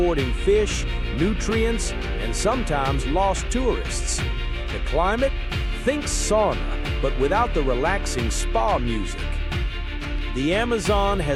fish, nutrients, and sometimes lost tourists. The climate? Think sauna, but without the relaxing spa music. The Amazon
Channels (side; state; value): both; identical; correlation 1.00